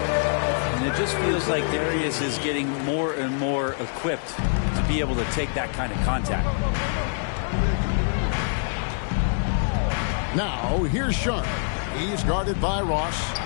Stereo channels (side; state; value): right; silent; digital silence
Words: it just feels like Darius is getting more and more equipped to be able to take that kind of contact. Now, here's Sharp. He's guarded by Ross.